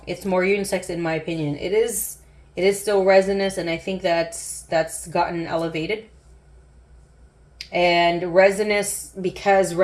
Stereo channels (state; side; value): identical; both; correlation 1.00